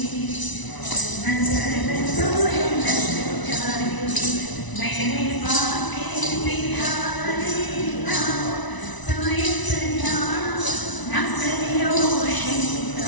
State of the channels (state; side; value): late; right; 1.0 ms